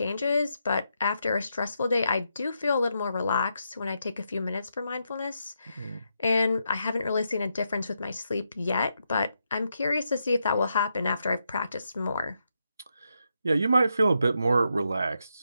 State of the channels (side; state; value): both; inverted; correlation -0.82